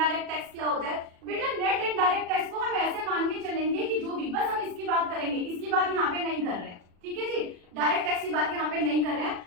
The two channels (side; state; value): left; late; 40 ms